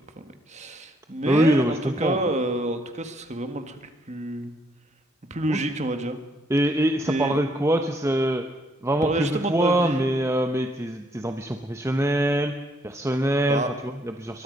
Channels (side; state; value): both; normal; correlation 0.70